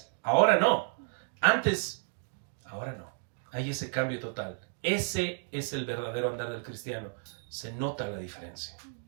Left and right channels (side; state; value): left; silent; 56 dB below the other